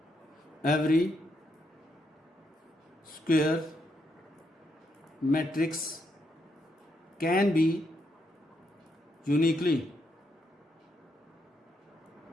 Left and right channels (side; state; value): both; normal; correlation 0.78